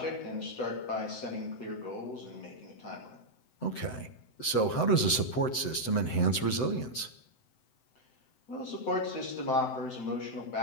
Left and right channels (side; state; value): right; late; 7.8 ms